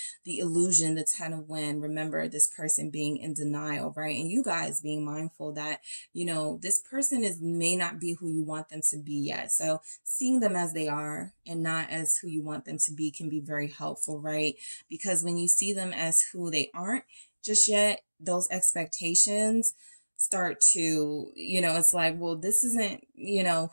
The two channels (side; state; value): both; inverted; correlation -1.00